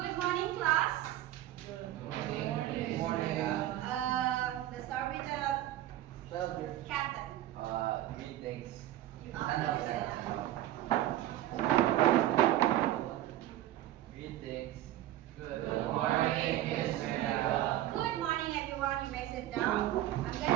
morning, class. Good morning. Let's start with the captain. Greetings. Greetings. Good morning, Miss Mega. Good morning, everyone. You may sit down. I'm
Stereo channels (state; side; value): quieter; left; 14.0 dB